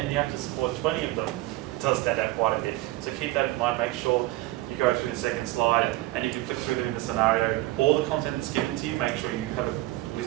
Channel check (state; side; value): quieter; left; 18.4 dB